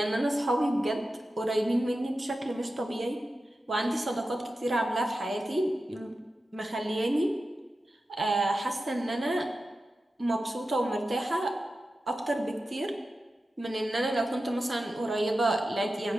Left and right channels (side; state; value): both; normal; correlation 0.93